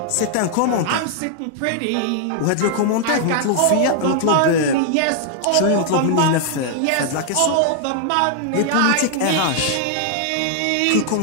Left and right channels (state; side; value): different; both; correlation 0.00